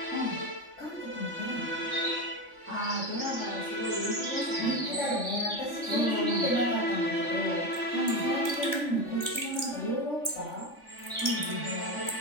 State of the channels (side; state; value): right; late; 3.5 ms